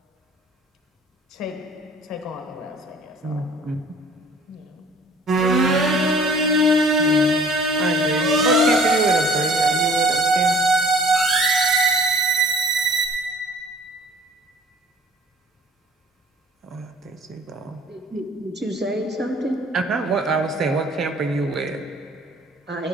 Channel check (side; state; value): both; normal; correlation 0.52